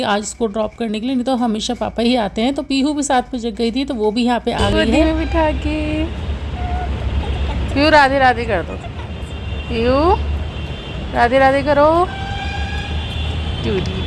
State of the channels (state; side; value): identical; both; correlation 1.00